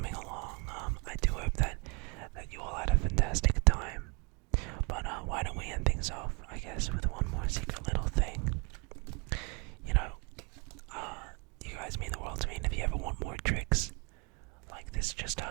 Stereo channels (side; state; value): left; quieter; 32.9 dB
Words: along. I do hope that you all had a fantastic time. But why don't we end things off, I guess, with one more secret little thing. You know, you guys mean the world to me, and if you ever want more tricks like this, just